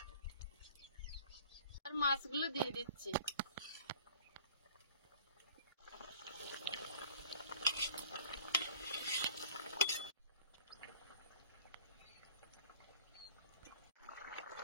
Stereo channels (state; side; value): inverted; both; correlation -0.50